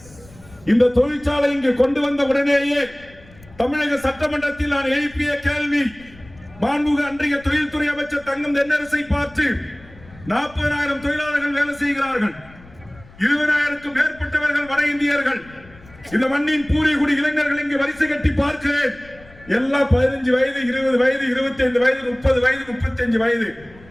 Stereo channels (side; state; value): left; noise; rumble, 23 dB below the sound